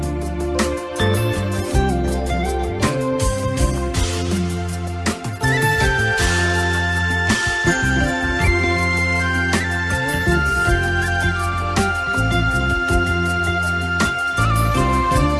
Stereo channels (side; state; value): both; identical; correlation 1.00